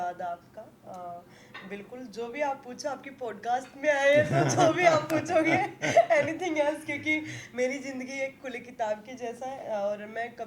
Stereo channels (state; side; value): identical; both; correlation 1.00